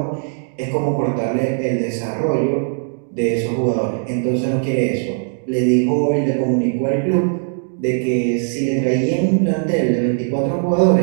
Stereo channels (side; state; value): left; silent; digital silence